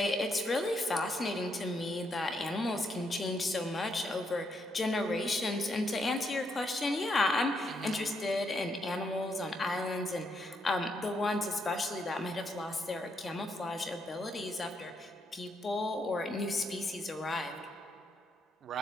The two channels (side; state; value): both; normal; correlation 0.77